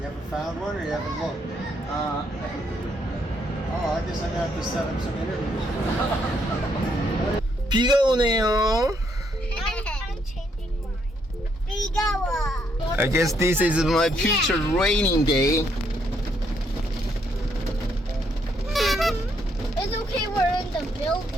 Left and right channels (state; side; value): normal; both; correlation 0.73